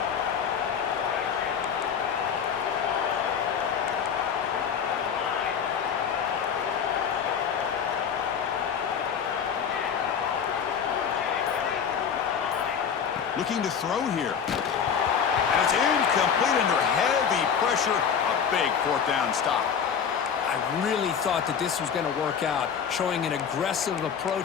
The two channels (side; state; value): right; quieter; 7.3 dB